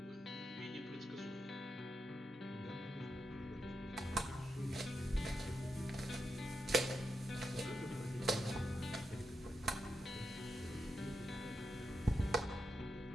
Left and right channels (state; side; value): normal; both; correlation 0.85